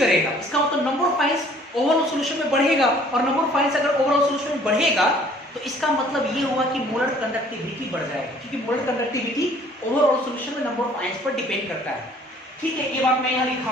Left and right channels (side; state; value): both; normal; correlation 0.56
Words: इसका मतलब number of ions overall solution में बढ़ेगा, और नंबर ऑफ आयंस अगर ओवरऑल सॉल्यूशन में बढ़ेगा तो इसका मतलब ये हुआ कि मोलर कंडक्टिविटी बढ़ जाएगी, क्योंकि मोलर कंडक्टिविटी ओवरऑल सॉल्यूशन में नंबर ऑफ आयंस पर डिपेंड करता है। ठीक है, ये बात मैं यहाँ